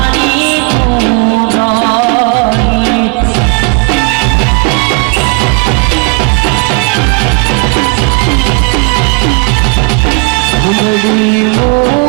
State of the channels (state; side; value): quieter; left; 28.7 dB